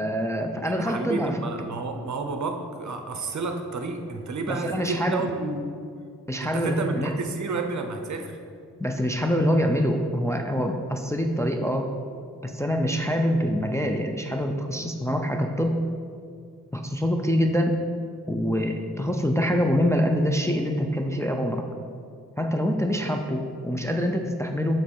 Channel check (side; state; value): both; normal; correlation 0.73